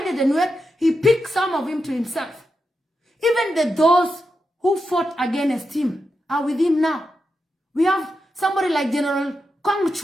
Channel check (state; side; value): normal; both; correlation 0.87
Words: the Nuer. He picked some of him to himself. Even those who fought against him are with him now. We have somebody like General Kong